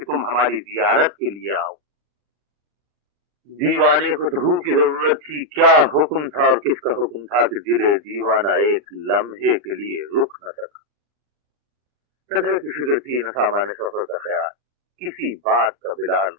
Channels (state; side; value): late; left; 40 ms